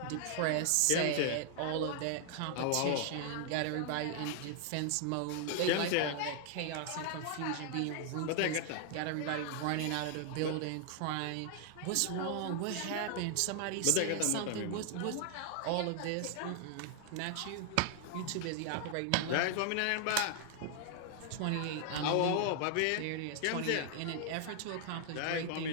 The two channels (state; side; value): different; both; correlation 0.00